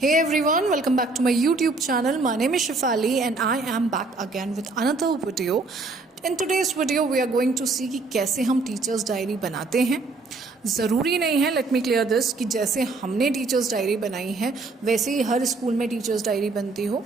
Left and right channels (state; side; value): quieter; left; 3.6 dB